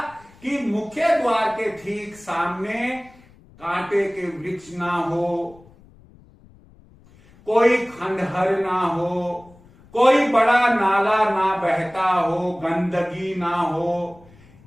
कि मुख्य द्वार के ठीक सामने कांटे के वृक्ष ना हो, कोई खंडहर ना हो, कोई बड़ा नाला ना बहता हो, गंदगी ना हो।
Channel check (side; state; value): left; noise; rumble, 26 dB below the sound